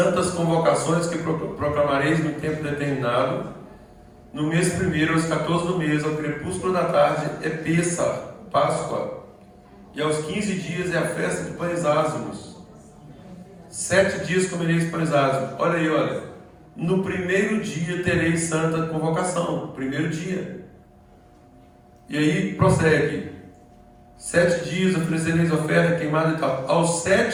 convocações que proclamareis no tempo determinado, no mês primeiro, aos 14 do mês, ao crepúsculo da tarde, é Pessa, Páscoa, e aos 15 dias é a festa de pães ázimos. 7 dias comereis pães ázimos. Olha aí, olha. No primeiro dia tereis santa convocação. Primeiro dia. E aí prossegue. 7 dias oferecereis oferta queimada e tal. Ao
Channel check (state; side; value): identical; both; correlation 1.00